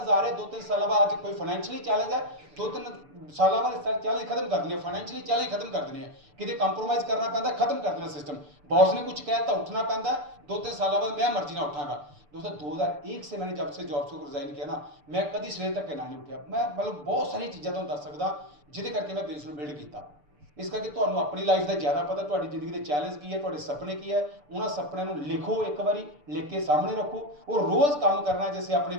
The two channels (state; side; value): late; left; 6.8 ms